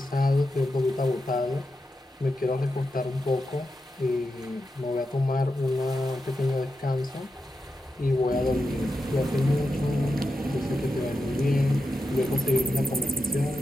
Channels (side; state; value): both; normal; correlation 0.88